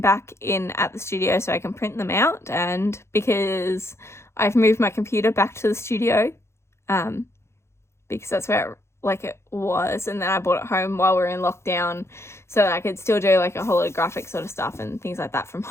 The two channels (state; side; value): late; right; 0.13 ms